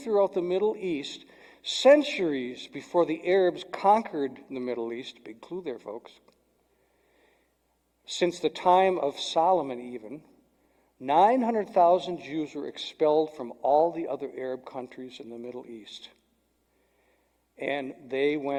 the Middle East centuries before the Arabs conquered the Middle East, big clue there, folks, since the time of Solomon even, 900,000 Jews were expelled from all the other Arab countries in the Middle East. And they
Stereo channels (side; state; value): both; identical; correlation 1.00